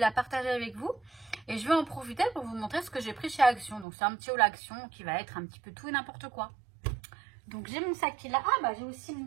partager avec vous. Et je vais en profiter pour vous montrer ce que j'ai pris chez Action. Donc, c'est un petit haul Action qui va être un petit peu tout et n'importe quoi. Donc, j'ai mon sac qui est là. Ah, bah, j'ai aussi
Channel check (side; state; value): left; drops out; at 3.9 s